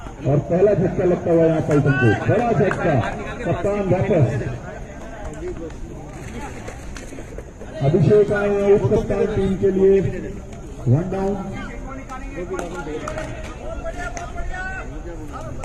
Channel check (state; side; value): identical; both; correlation 1.00